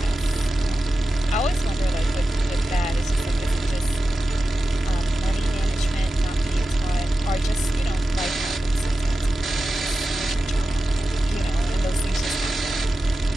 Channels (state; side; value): normal; both; correlation 0.93